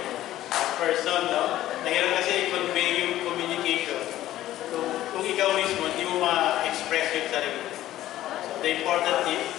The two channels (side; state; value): right; quieter; 14.0 dB